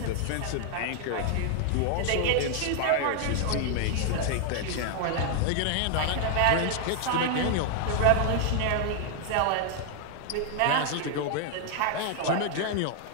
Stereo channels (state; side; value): different; both; correlation 0.00